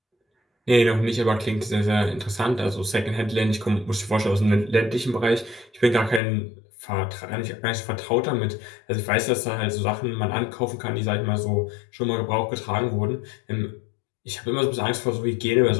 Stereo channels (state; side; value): drops out; right; at 6.2 s